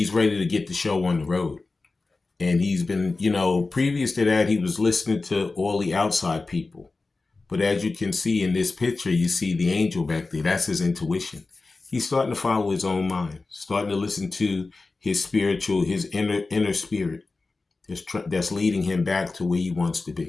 ready to get the show on the road. And he's been, you know, previous to that, he was listening to all the outside people. But as you can see in this picture, you see the angel back there. That's his intuition. He's starting to follow his own mind, starting to listen to his spiritual, his inner spirit that's leading him back to where he wants to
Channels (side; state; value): right; quieter; 3.7 dB